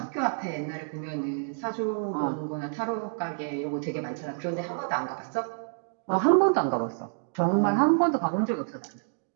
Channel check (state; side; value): silent; left; digital silence